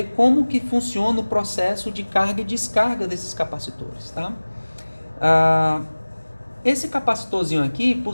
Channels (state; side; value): inverted; both; correlation -1.00